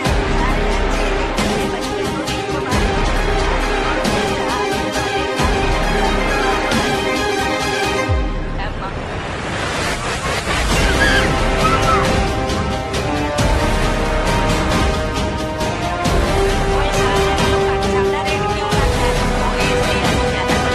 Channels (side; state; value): both; identical; correlation 1.00